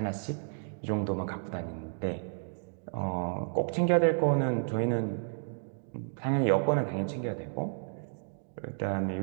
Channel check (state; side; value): silent; left; digital silence